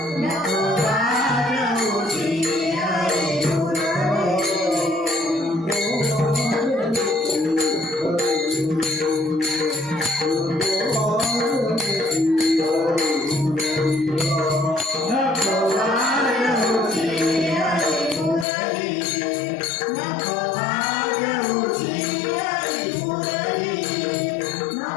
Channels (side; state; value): right; drops out; at 18.4 s